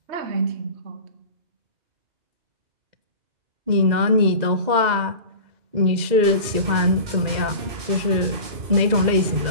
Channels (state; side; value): late; left; 2.0 ms